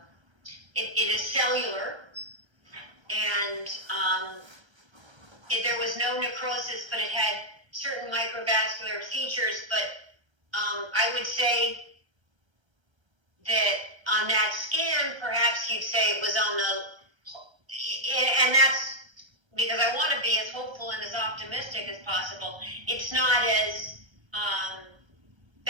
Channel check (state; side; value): late; left; 1.3 ms